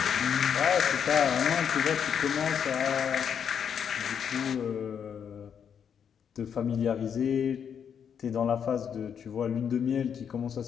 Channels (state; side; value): quieter; right; 7.8 dB